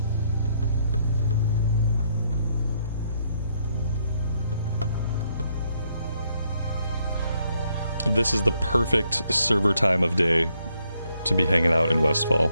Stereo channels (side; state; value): both; inverted; correlation -0.73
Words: This is the perfect server time of day to be hanging out in Westfall.